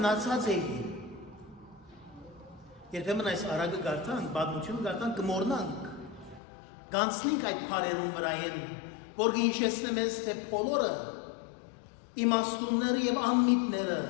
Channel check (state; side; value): drops out; right; at 6.4 s